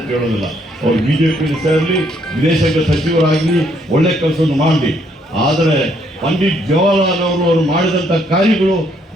ಹೇಳೋದಿಲ್ಲ. ಅವ್ರು ಬಿಜೆಪಿಯಲ್ಲಿ ಸೇರಲಿ, ವಿದೇಶಾಂಗ ಸಚಿವರಾಗಲಿ, ಒಳ್ಳೆ ಕೆಲಸವನ್ನು ಮಾಡಲಿ. ಆದರೆ ಪಂಡಿತ್ ಜವಾಹರ್ಲಾಲ್ ಅವರು ಮಾಡಿದಂಥ ಕಾರ್ಯಗಳು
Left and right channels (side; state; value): both; normal; correlation 0.70